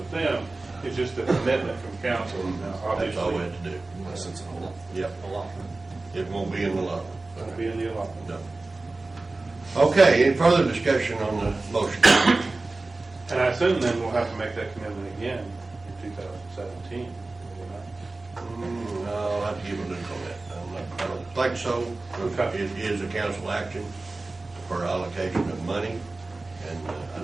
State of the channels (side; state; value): left; quieter; 3.3 dB